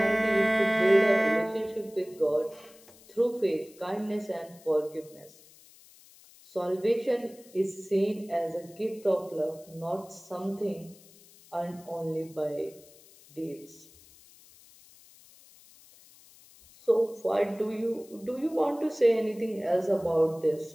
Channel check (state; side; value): noise; left; hiss, 24 dB below the sound